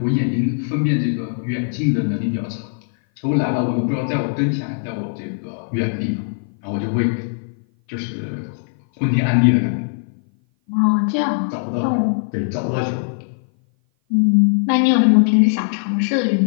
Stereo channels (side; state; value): right; silent; 57 dB below the other